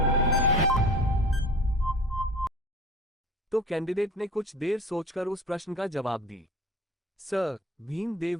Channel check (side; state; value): both; normal; correlation 0.42